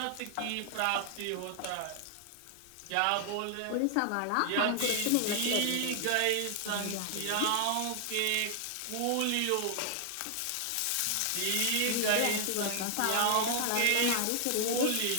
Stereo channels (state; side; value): different; both; correlation 0.00